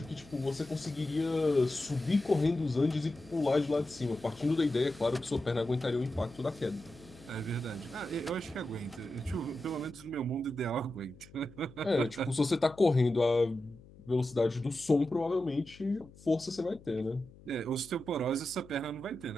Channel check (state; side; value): noise; left; hum, 22 dB below the sound